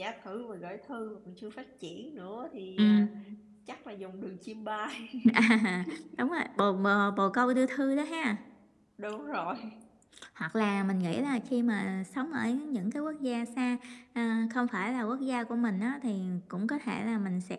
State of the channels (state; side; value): identical; both; correlation 1.00